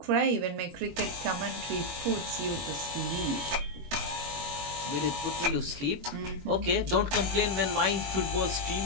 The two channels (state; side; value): late; left; 21 ms